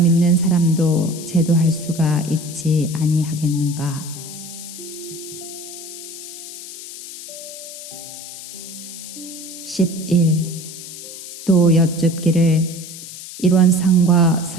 사람도 제도할 수가 있지 아니하겠는가? 11. 또 여쭙기를 일원상과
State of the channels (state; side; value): noise; left; hiss, 12 dB below the sound